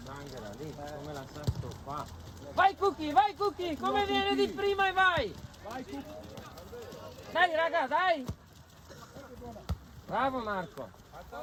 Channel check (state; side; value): identical; both; correlation 1.00